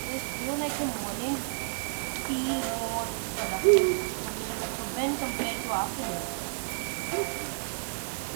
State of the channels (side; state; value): left; silent; digital silence